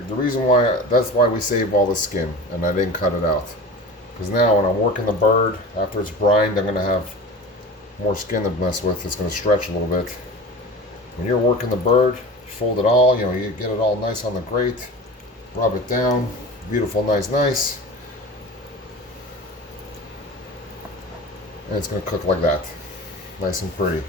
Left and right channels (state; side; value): normal; both; correlation 0.34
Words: reason why that's why we save all the skin and I didn't cut it out. Because now when I'm working the bird, after it's brined, I'm gonna have more skin to mess with. It's gonna stretch a little bit. When you're working the bird, you fold it all, you know, you get it all nice on the grate, rub it down, beautiful, nice. And it's going to cook like that. Nice and pretty.